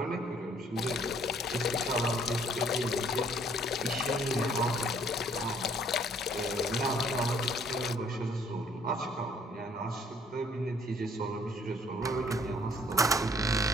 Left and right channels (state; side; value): normal; both; correlation 0.61